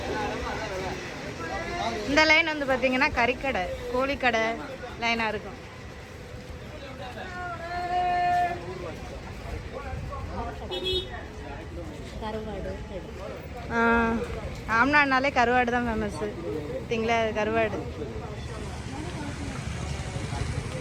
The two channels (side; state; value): both; identical; correlation 1.00